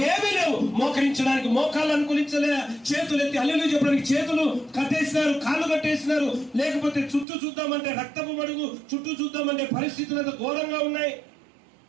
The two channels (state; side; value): drops out; left; at 7.2 s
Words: లేవు. మోకరించడానికి మోకాళ్ళు అనుకూలించలే, చేతులు ఎత్తి హల్లెలూయా చెప్పడానికి చేతులు కట్టేసినారు, కాళ్ళు కట్టేసినారు. లేకపోతే చుట్టూ చూద్దామంటే రక్తపు మడుగు, చుట్టూ చూద్దామంటే పరిస్థితులు అంత ఘోరంగా ఉన్నాయి.